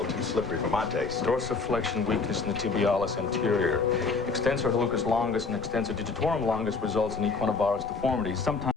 too slippery for my taste. Dorsiflexion weakness in the tibialis anterior. Extensor hallucis longus and extensor digitorum longus results in equinovarus deformities, sometimes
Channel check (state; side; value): quieter; right; 4.4 dB